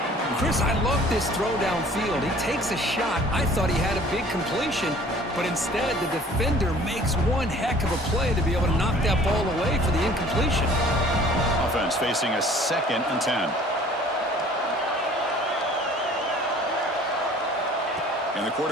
Chris, I love this throw downfield. He takes a shot. I thought he had a big completion, but instead the defender makes one heck of a play to be able to knock that ball away for the incompletion. Offense facing a second and 10. And the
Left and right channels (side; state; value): both; normal; correlation 0.51